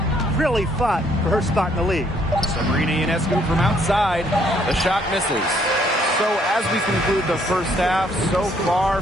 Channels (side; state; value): both; normal; correlation 0.67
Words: really fought for her spot in the league? Sabrina Ionescu from outside. The shot misses. So as we conclude the first half, so far